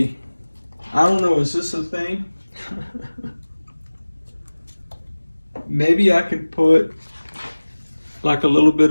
I don't know, is this a thing? Maybe I could put like a little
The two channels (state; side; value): inverted; both; correlation -1.00